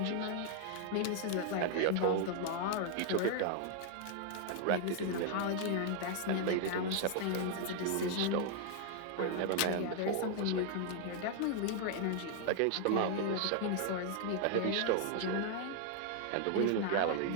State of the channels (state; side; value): different; both; correlation 0.00